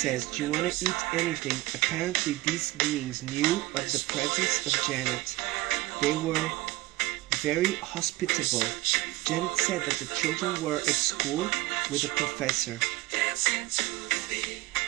do you want to eat anything? Apparently these beings knew of the presence of Janet. They were very hospitable. Janet said that the children were at school with a professor.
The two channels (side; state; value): left; quieter; 19.2 dB